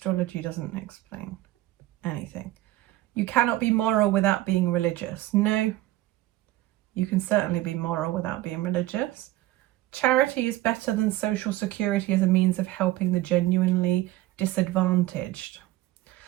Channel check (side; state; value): left; quieter; 16.0 dB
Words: doesn't explain anything. You cannot be moral without being religious. No, you can certainly be moral without being religious. Charity is better than social security as a means of helping the genuinely disadvantaged.